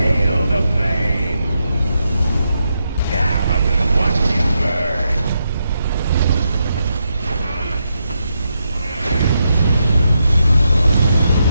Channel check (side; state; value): both; inverted; correlation -0.83